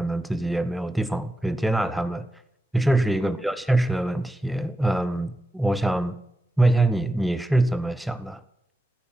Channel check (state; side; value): normal; both; correlation 0.92